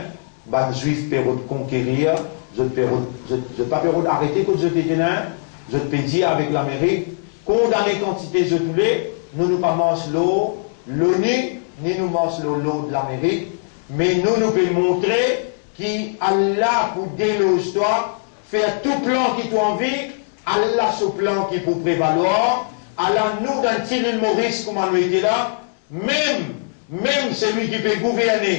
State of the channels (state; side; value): silent; right; digital silence